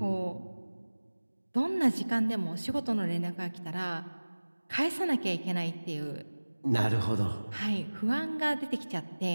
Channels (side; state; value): both; inverted; correlation -1.00